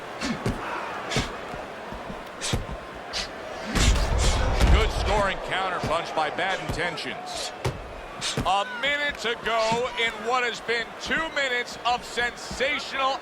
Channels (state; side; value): identical; both; correlation 1.00